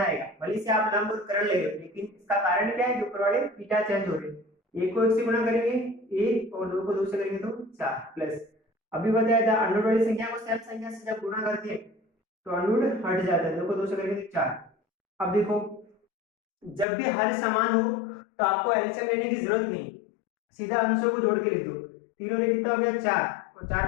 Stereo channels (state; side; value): drops out; right; at 16.9 s